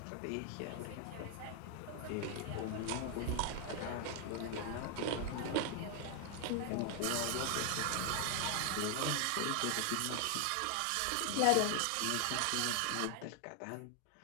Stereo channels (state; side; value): different; both; correlation 0.00